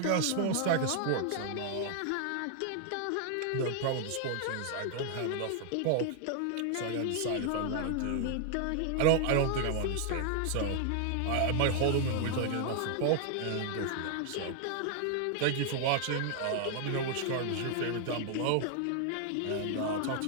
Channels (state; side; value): different; both; correlation 0.00